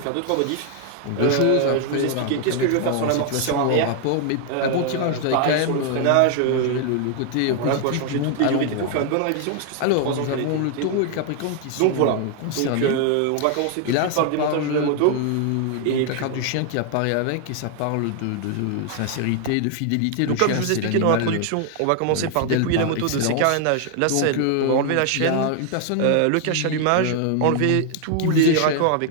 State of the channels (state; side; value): different; both; correlation 0.00